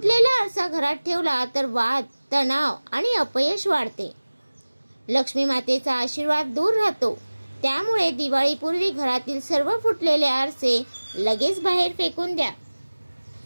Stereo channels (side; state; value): both; inverted; correlation -1.00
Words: आरसा घरात ठेवला तर वाद, तणाव आणि अपयश वाढते। लक्ष्मी मातेचा आशीर्वाद दूर राहतो। त्यामुळे दिवाळीपूर्वी घरातील सर्व फुटलेले आरसे लगेच बाहेर फेकून द्या।